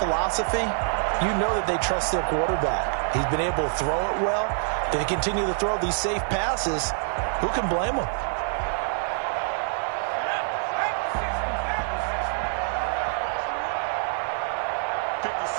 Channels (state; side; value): silent; left; 57 dB below the other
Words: you know that they trust their quarterback. He's been able to throw it well. If they continue to throw these safe passes, who can blame them?